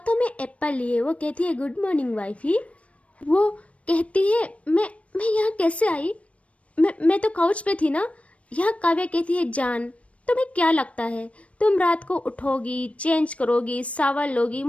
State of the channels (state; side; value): late; right; 0.064 ms